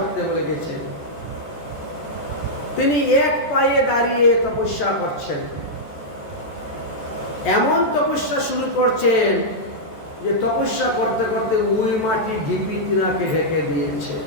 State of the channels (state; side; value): late; right; 14 ms